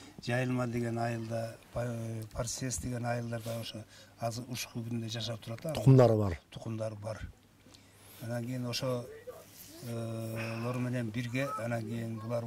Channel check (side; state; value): both; identical; correlation 1.00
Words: Жайылма деген айылда, Парсес деген айылдарда ошо азыр ушул күндө жашап турат. Тукумдары бар. Анан кийин ошолор менен бирге, анан кийин булар